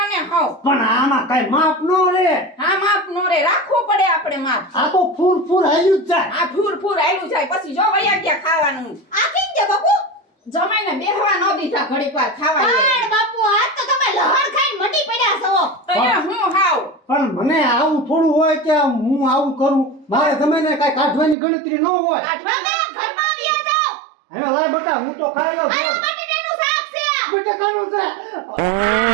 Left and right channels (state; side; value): drops out; left; at 21.4 s